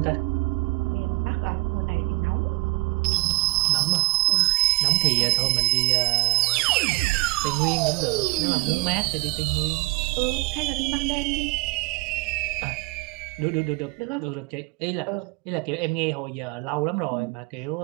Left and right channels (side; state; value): left; quieter; 23.7 dB